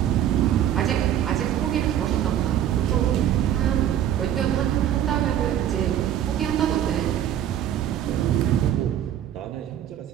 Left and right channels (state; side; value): quieter; left; 10.8 dB